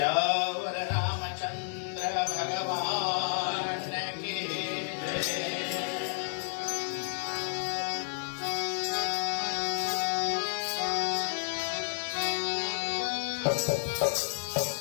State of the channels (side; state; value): right; silent; digital silence